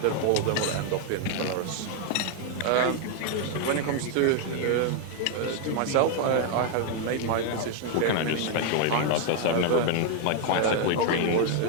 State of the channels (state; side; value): different; both; correlation 0.01